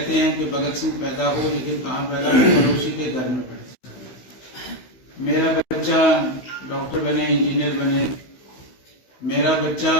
हैं कि भगत सिंह पैदा हो, लेकिन कहाँ पैदा हो, पड़ोसी के घर में पड़े। मेरा बच्चा डॉक्टर बने, इंजीनियर बने, मेरा बच्चा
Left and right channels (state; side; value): late; right; 16 ms